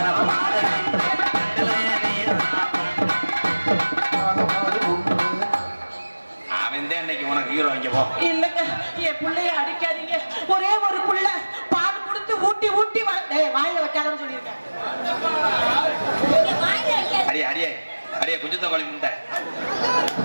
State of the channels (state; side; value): inverted; both; correlation -1.00